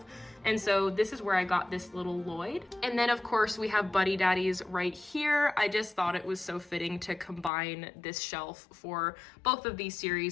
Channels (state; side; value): drops out; right; at 7.5 s